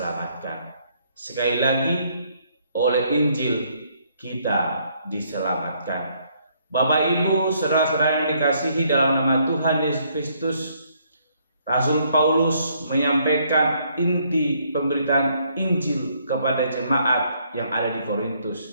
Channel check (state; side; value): inverted; both; correlation -0.69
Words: Sekali lagi, oleh Injil kita diselamatkan. Bapak Ibu, saudara-saudara yang dikasihi dalam nama Tuhan Yesus Kristus, Rasul Paulus menyampaikan inti pemberitaan Injil kepada jemaat yang ada di